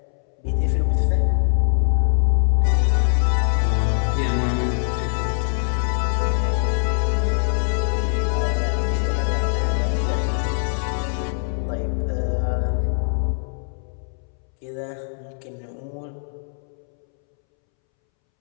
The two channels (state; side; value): silent; right; 64 dB below the other